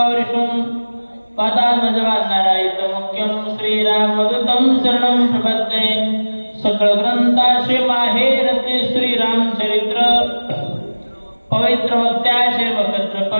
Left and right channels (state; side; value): inverted; both; correlation -1.00